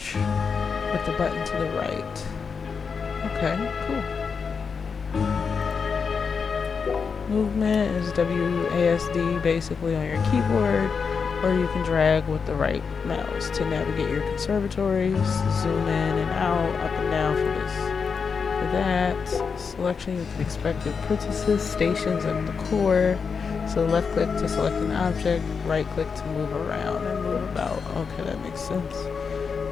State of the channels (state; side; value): quieter; right; 5.7 dB